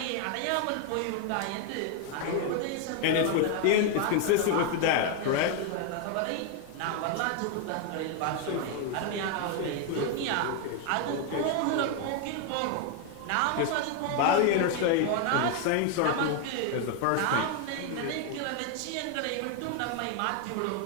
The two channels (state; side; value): different; both; correlation 0.01